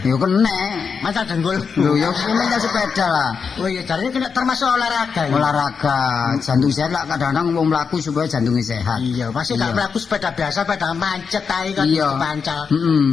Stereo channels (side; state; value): right; quieter; 5.8 dB